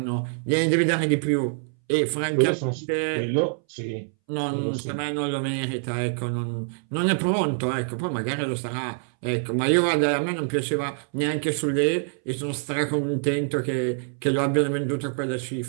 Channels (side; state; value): left; silent; 62 dB below the other